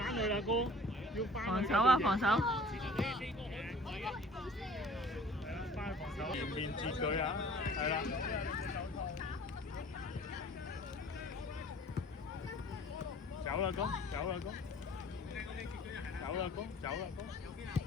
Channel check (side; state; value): both; normal; correlation 0.49